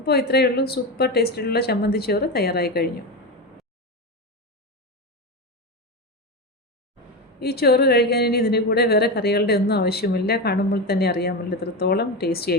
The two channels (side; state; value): both; normal; correlation 0.17